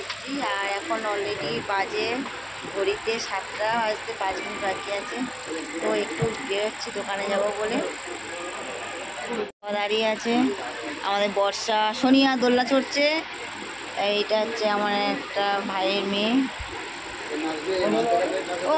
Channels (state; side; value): identical; both; correlation 1.00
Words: আর এখন অলরেডি বাজে ঘড়িতে 7টা বাজতে 5 মিনিট বাকি আছে। তো একটু বেরোচ্ছি দোকানে যাব বলে। দাঁড়িয়ে আছে আমাদের বর্ষা, সোনিয়া দোলনা চড়ছে। এইটা হচ্ছে আমার একটা ভাইয়ের মেয়ে। ও